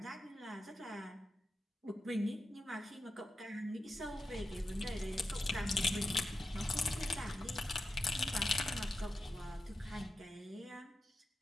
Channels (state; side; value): normal; both; correlation 0.90